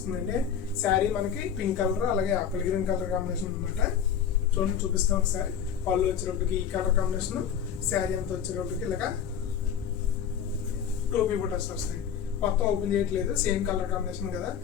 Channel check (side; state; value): right; quieter; 8.3 dB